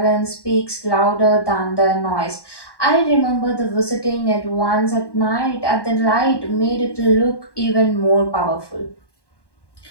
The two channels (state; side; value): late; right; 1.1 ms